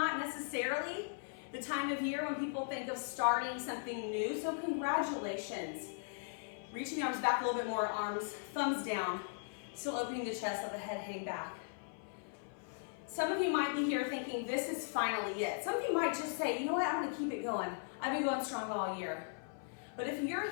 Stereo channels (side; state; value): right; silent; 52 dB below the other